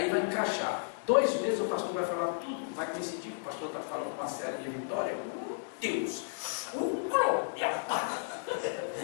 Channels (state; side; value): silent; right; digital silence